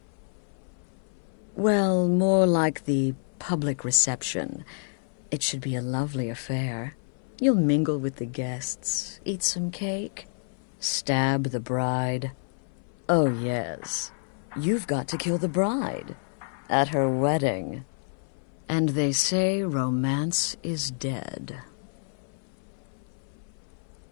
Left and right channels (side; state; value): right; silent; 57 dB below the other